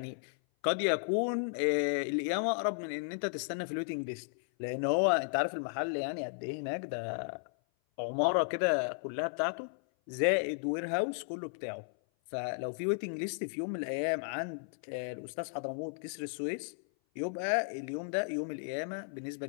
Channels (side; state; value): right; silent; 55 dB below the other